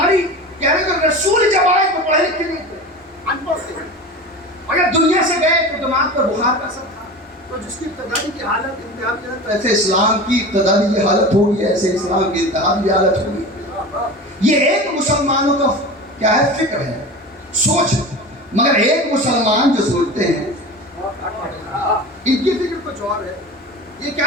کہہ رہے کہ رسول جب آئے تو پڑھے لکھے نہیں تھے، ان پڑھ تھے، اور جب دنیا سے گئے تو دماغ پر بخار کا اثر تھا. تو جس کی ابتدائی کی حالت انتہا کی حالت، ایسے اسلام کی ابتدائی کی حالت ہوگی، ایسے اسلام کی انتہا کی حالت ہوگی. یہ ایک مسلمانوں کا کیا ہے، فکر ہے، سوچ ہے. مگر ایک مسلمان جو سوچتے ہیں ان کی فکر کچھ اور ہے. یہ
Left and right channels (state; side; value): normal; both; correlation 0.32